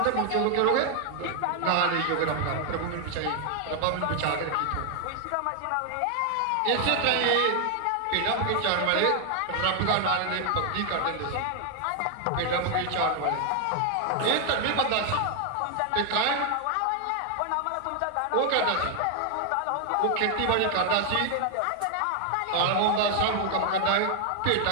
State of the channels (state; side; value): different; both; correlation 0.00